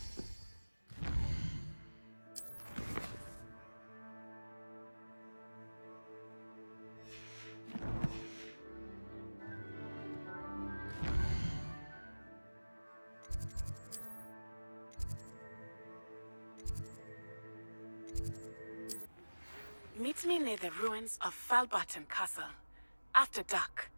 Meet me near the ruins of Falbarton Castle. After dark.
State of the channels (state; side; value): inverted; both; correlation -1.00